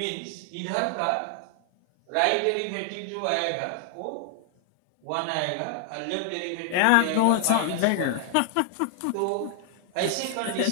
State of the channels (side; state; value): both; different; correlation 0.00